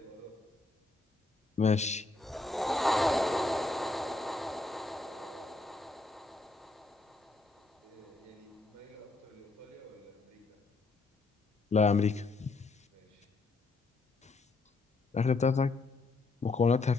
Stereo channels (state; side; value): quieter; right; 3.4 dB